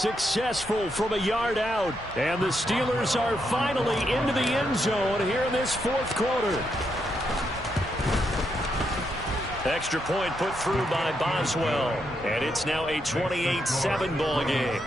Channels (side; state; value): both; normal; correlation 0.80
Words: from a yard out. And the Steelers are finally into the end zone here in this 4th quarter. Extra point put through by Boswell. And it's now a 28-7 ball game.